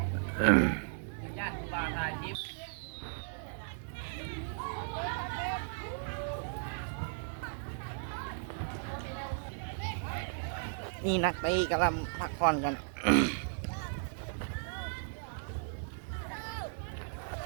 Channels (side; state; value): left; silent; digital silence